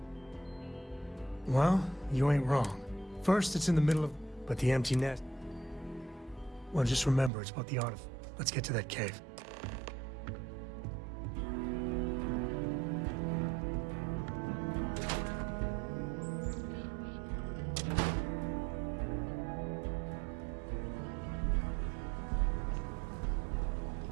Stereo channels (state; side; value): drops out; left; at 7.3 s